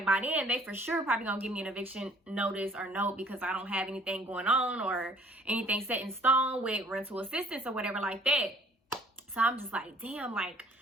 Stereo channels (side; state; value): both; normal; correlation 0.57